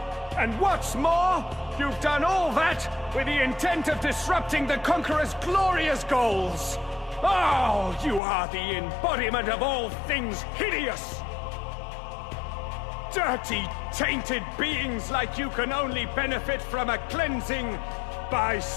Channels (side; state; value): right; drops out; at 8.2 s